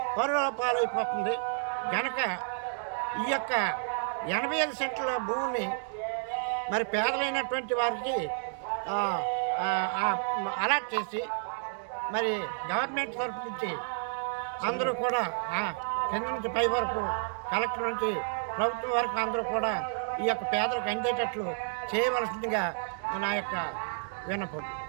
పరుల పాలైపోతుంది కనుక ఈ యొక్క 85 సెంట్ల భూమిని మరి పేదలైనటువంటి వారికి అలాట్ చేసి మరి గవర్నమెంట్ తరఫు నుంచి అందరూ కూడా కింద నుంచి పై వరకు కలెక్టర్ నుంచి ప్రభుత్వం వరకు అందరూ కూడా ఈ యొక్క పేదలకు అందేటట్లు చేయవలసిందిగా నా యొక్క విన్నపం.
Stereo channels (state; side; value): silent; left; digital silence